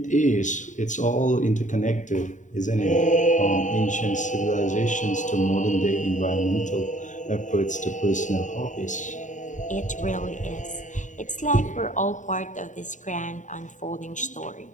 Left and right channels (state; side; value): late; right; 0.36 ms